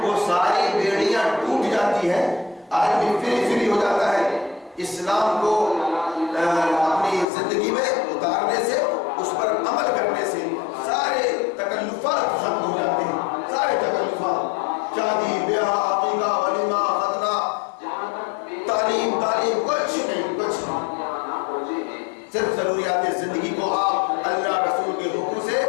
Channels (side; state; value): right; drops out; at 7.2 s